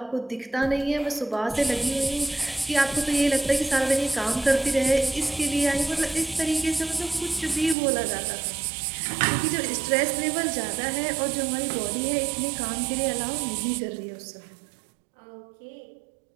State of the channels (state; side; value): drops out; left; at 7.8 s